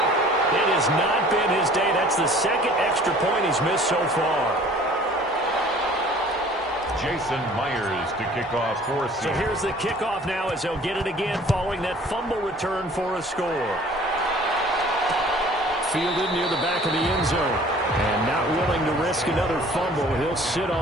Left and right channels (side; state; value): both; normal; correlation 0.50